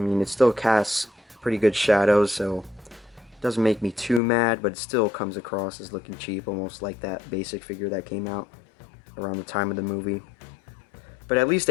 it still casts pretty good shadows, so it doesn't make me too mad, but it still comes across as looking cheap, almost like that basic figure that came out around the time of the movie. But at least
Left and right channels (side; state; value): right; drops out; at 4.2 s